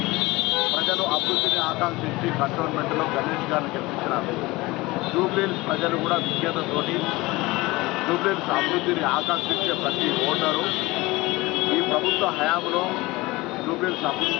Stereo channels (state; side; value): quieter; right; 21.2 dB